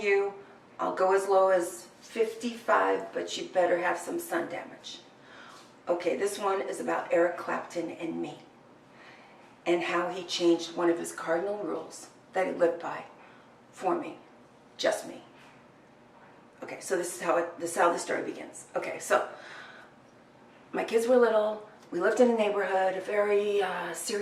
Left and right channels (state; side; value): identical; both; correlation 1.00